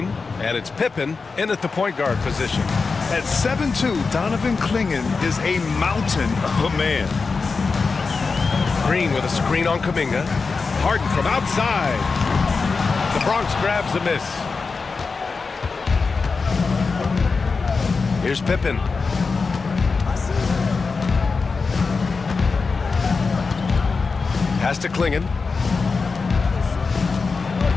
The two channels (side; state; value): right; quieter; 4.5 dB